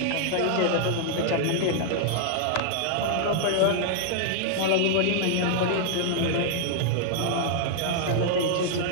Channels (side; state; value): both; different; correlation -0.01